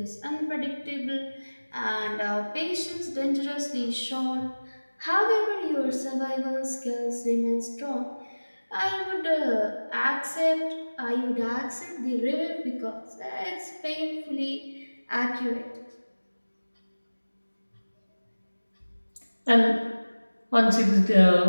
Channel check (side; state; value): both; inverted; correlation -1.00